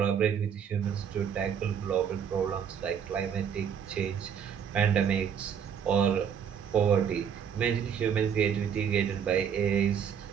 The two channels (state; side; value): quieter; left; 7.8 dB